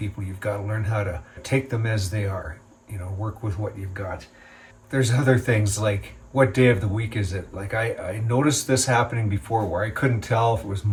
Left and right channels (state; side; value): identical; both; correlation 1.00